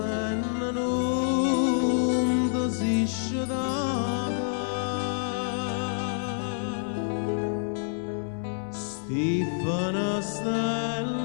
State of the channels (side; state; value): right; silent; digital silence